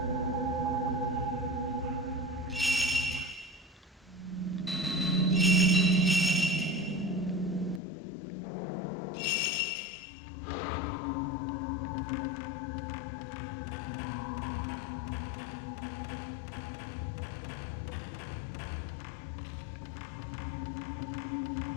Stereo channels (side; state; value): right; drops out; at 7.8 s